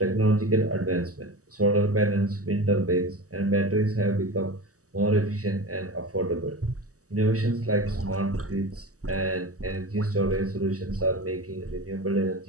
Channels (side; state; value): left; late; 0.66 ms